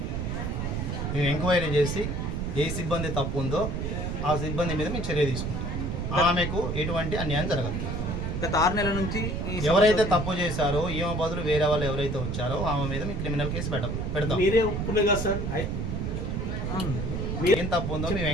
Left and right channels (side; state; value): right; noise; rumble, 2 dB below the sound